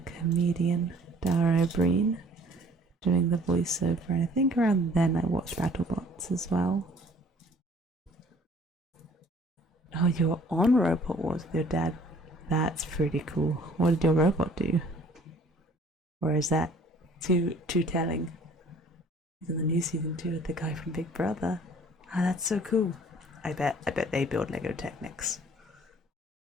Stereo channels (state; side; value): normal; both; correlation 0.55